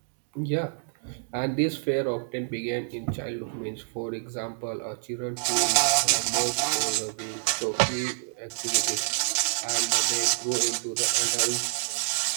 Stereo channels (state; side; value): silent; left; digital silence